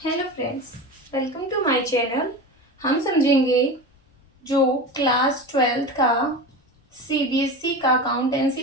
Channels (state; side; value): normal; both; correlation 0.28